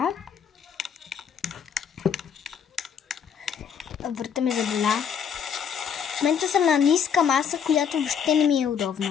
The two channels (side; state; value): right; quieter; 7.6 dB